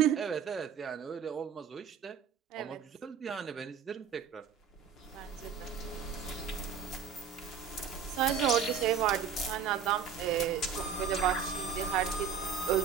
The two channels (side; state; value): left; quieter; 7.0 dB